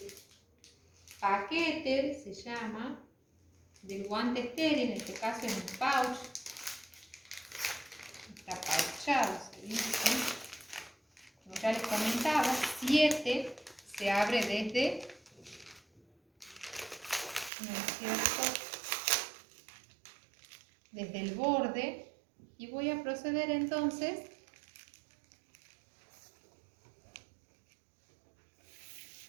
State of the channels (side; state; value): left; drops out; at 17.5 s